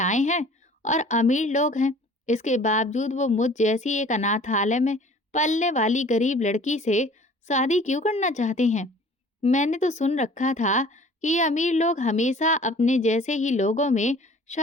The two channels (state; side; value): normal; both; correlation 0.49